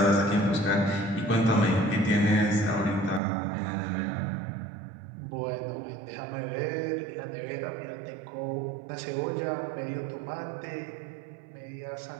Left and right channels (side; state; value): left; drops out; at 3.2 s